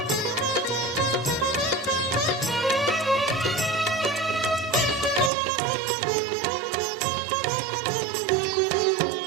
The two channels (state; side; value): drops out; left; at 5.3 s